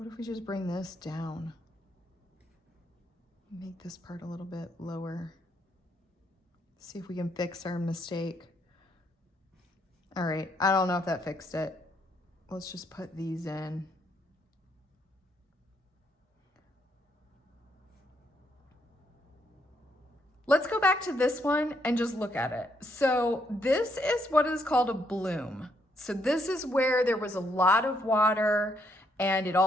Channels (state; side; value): normal; both; correlation 0.73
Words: if we just bring this down? Make this part a little bit lower. See if we can fix our mistake. All right, I don't know if that fixed it. Let's just put these in. Let's go back to this one and just look at it. So this is what is called a bloom. So this is where there was a lot of water and it